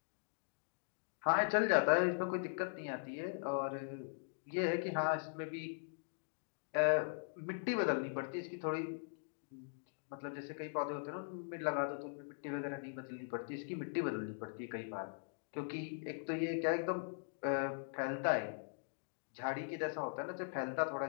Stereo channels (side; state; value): right; silent; digital silence